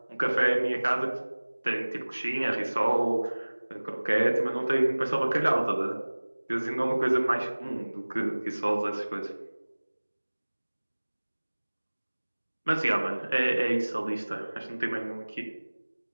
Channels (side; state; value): both; inverted; correlation -1.00